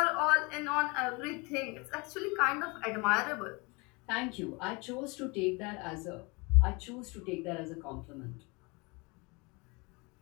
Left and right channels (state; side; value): quieter; right; 27.8 dB